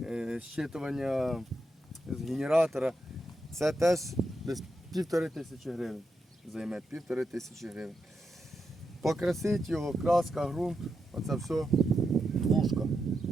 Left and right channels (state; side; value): normal; both; correlation 0.86